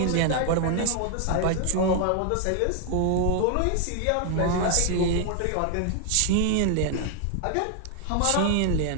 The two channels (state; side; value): different; both; correlation 0.00